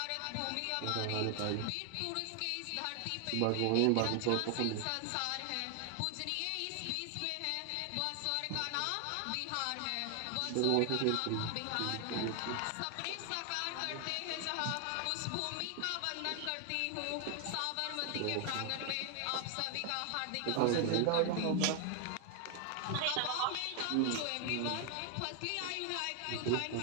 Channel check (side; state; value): both; different; correlation 0.00